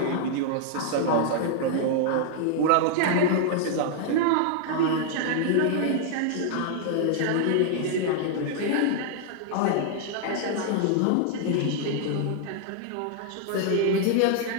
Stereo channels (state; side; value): different; both; correlation -0.01